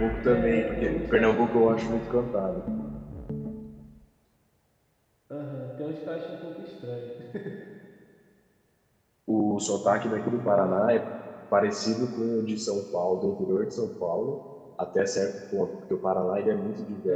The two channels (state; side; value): identical; both; correlation 1.00